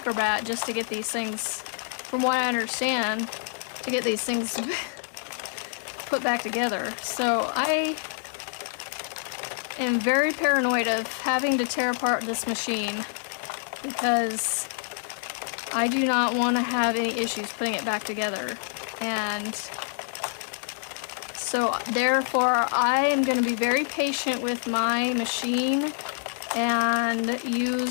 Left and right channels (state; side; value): silent; right; 60 dB below the other